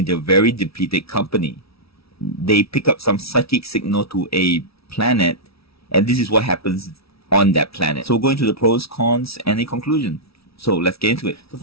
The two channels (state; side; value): late; right; 0.76 ms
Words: their very depleted company, they pick up some psychic signal to a planet, and this is what happens on that planet. So we're going to the pros, cons, and a conclusion. So let's get into it. The